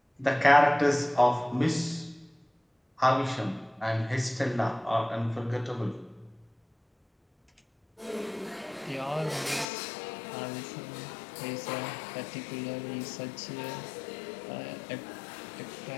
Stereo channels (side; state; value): right; drops out; at 9.7 s